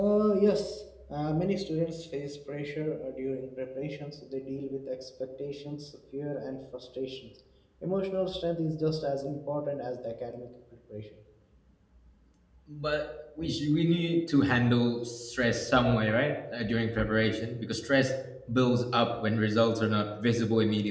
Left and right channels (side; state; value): both; identical; correlation 1.00